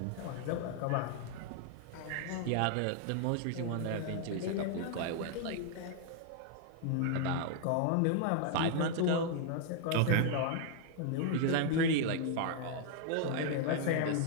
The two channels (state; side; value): different; both; correlation 0.00